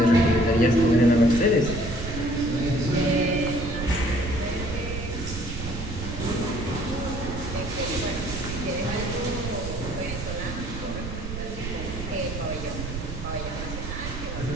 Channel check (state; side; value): noise; right; rumble, 7 dB below the sound